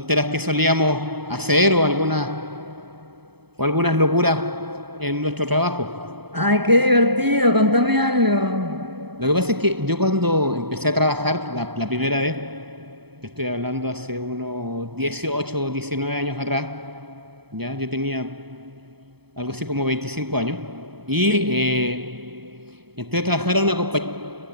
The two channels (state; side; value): late; left; 0.98 ms